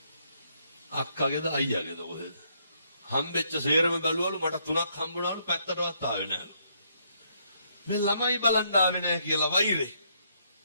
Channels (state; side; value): inverted; both; correlation -0.72